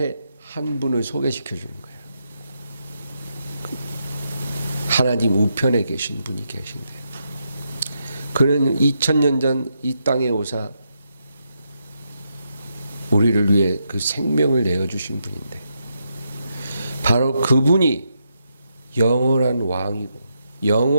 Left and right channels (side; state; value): both; inverted; correlation -0.82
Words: 한 분을 소개시켜 주는 거예요. 하나님 우편에 계신 분이 계신데 그는 2000년 전 이 땅에 오사 우리를 위해 그 생명을 내어주신 분인데 바로 그분이 영원한 왕이고